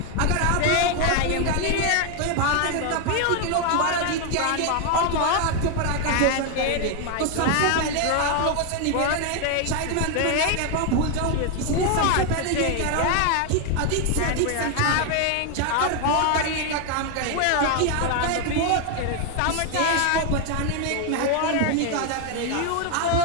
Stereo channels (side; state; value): both; different; correlation 0.01